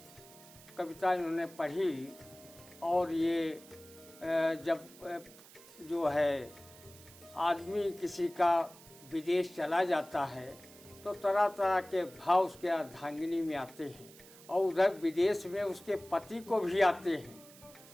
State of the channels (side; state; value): right; noise; hiss, 21 dB below the sound